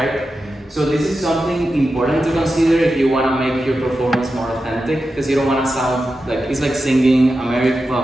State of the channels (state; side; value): normal; both; correlation 0.91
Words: So this is something important to consider if you want to make your performance more authentic, because you don't want to sound like it's like singing American.